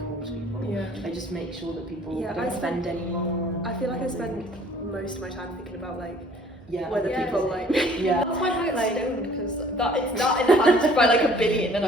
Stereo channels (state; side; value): noise; right; hum, 23 dB below the sound